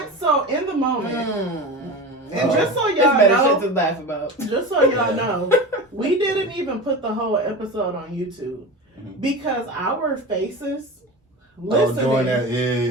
In the moment, and just so y'all know, shit to laugh about. Just so y'all know, we didn't even put the whole episode on YouTube because our faces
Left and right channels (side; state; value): both; normal; correlation 0.29